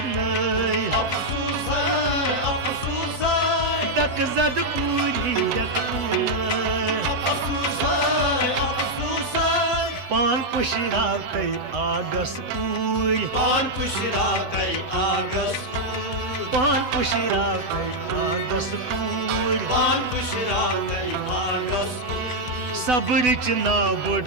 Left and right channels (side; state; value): left; late; 8.0 ms